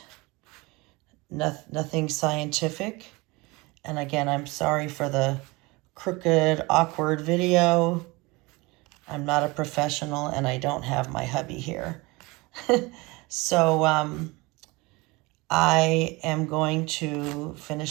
Nothing scientific. And again, I'm sorry for the crooked, awkward video. I'm not a professional, and I don't have my hubby here. So I am going to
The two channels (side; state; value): left; quieter; 24.2 dB